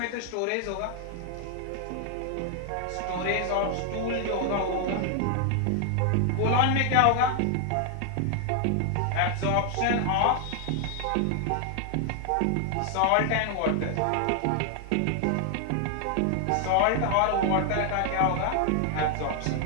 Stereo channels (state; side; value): different; both; correlation 0.00